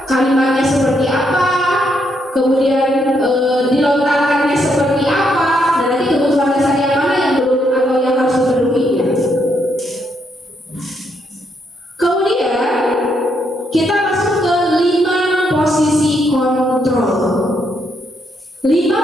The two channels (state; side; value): normal; both; correlation 0.76